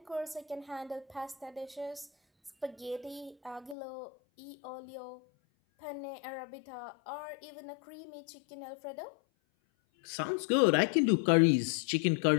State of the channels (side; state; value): right; drops out; at 3.8 s